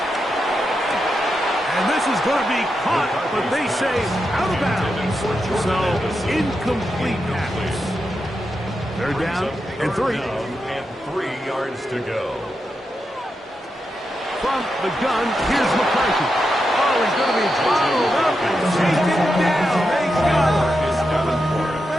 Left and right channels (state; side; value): normal; both; correlation 0.87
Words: And this is going to be caught, but they say out of bounds. So, incomplete pass. They're down and 3. And 3 yards to go. From the gun, here's McCarthy. Oh, he's going to be followed up and taken down. They got